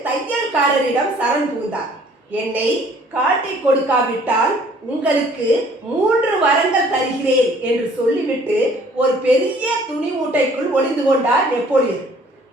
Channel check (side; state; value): both; normal; correlation 0.56